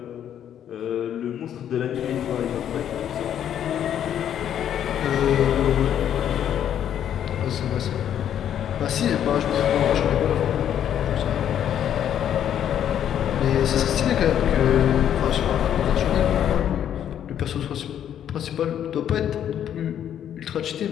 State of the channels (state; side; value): quieter; right; 9.9 dB